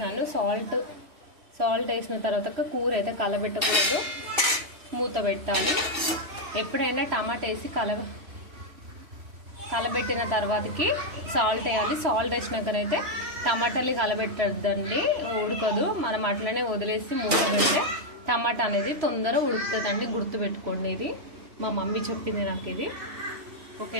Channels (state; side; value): late; left; 3.0 ms